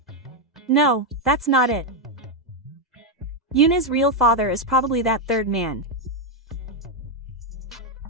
No, that's not it. Yuna's real father is probably that third man.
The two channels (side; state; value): both; normal; correlation 0.02